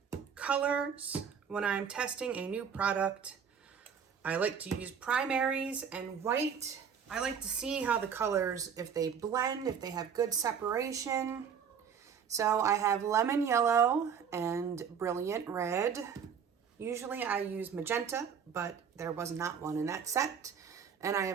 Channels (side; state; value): left; quieter; 7.2 dB